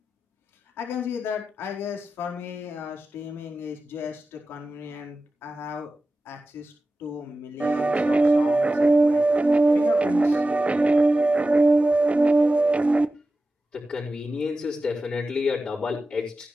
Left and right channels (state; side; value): normal; both; correlation 0.94